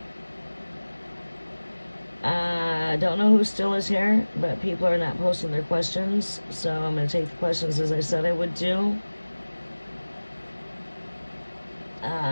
I don't know who still is here, but people are not posting their questions, so I'm going to take the questions as I said I would do.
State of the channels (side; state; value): both; inverted; correlation -1.00